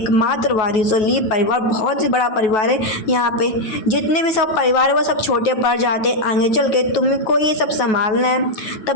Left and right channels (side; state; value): right; late; 9.3 ms